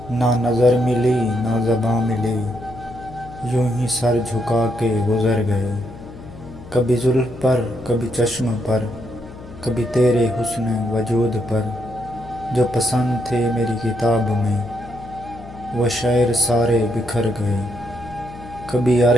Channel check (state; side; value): noise; left; hum, 16 dB below the sound